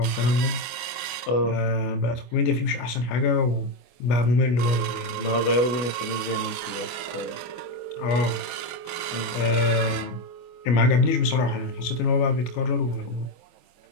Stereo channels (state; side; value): late; right; 24 ms